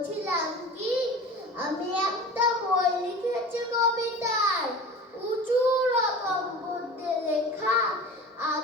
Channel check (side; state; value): both; normal; correlation 0.36